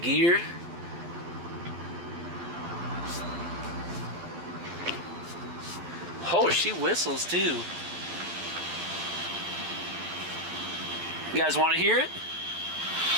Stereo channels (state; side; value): late; left; 12 ms